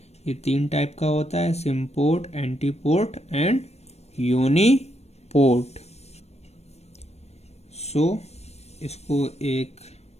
ये 3 टाइप का होता है, सिम्पोर्ट, एंटीपोर्ट एंड यूनिपोर्ट। सो इसको एक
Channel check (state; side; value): late; right; 0.31 ms